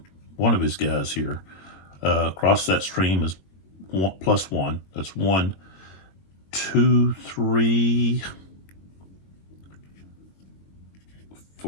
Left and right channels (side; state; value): right; late; 21 ms